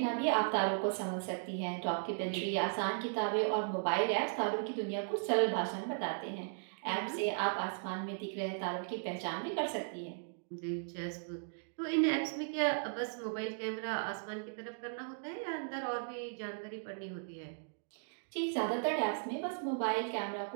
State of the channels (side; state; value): left; silent; digital silence